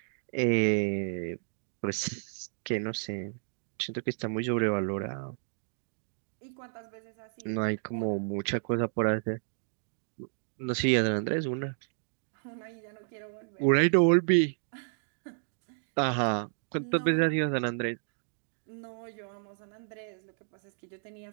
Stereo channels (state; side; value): silent; left; digital silence